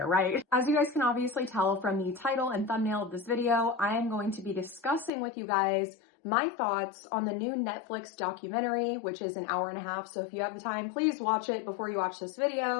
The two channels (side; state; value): right; drops out; at 5.1 s